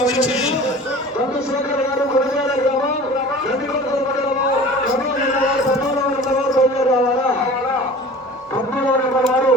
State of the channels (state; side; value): normal; both; correlation 0.41